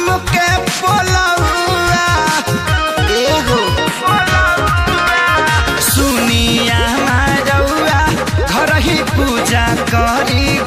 के पोलौआ एहो सुनिया रउआ घर ही पूजा करी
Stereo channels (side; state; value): both; identical; correlation 1.00